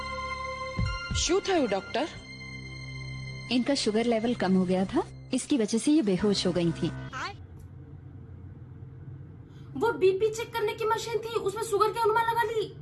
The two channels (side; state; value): both; identical; correlation 1.00